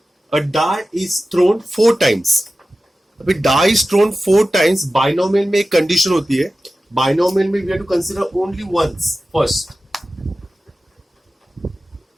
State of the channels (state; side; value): normal; both; correlation 0.95